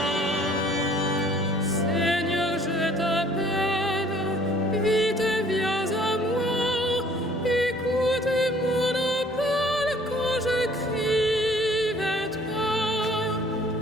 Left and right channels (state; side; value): normal; both; correlation 0.57